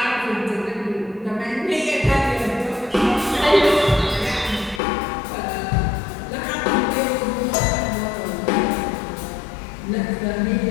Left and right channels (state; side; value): drops out; right; at 4.8 s